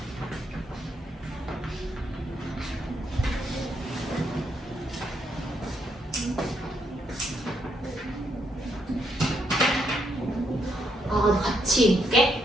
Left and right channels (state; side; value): normal; both; correlation 0.76